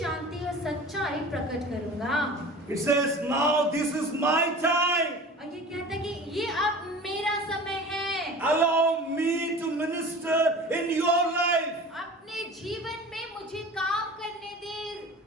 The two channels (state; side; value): normal; both; correlation 0.39